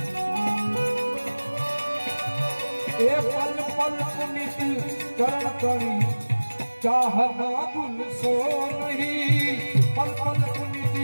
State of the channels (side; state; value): both; inverted; correlation -1.00